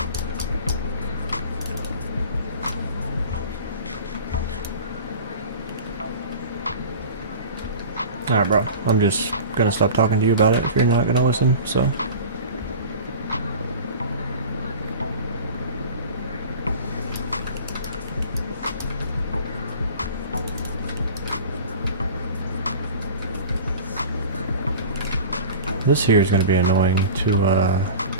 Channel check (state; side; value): inverted; both; correlation -0.37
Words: Alright, bro. I'm just gonna stop talking to you about it if you're not gonna listen, so. This here is gonna be annoying